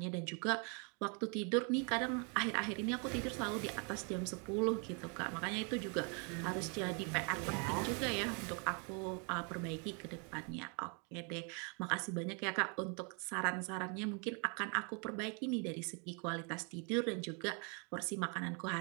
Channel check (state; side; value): quieter; left; 36.4 dB